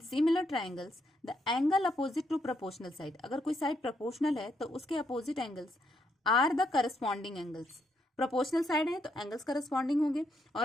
triangles the angle opposite to proportional side, अगर कोई साइड प्रोपोर्शनल है तो उसके opposite angles are the corresponding angles. Proportional side है तो एंगल्स करस्पॉन्डिंग होंगे,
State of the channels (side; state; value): both; normal; correlation 0.77